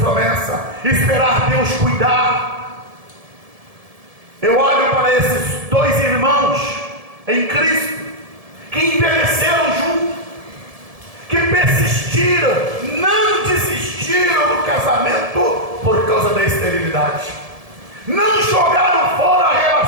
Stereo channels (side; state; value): left; late; 1.7 ms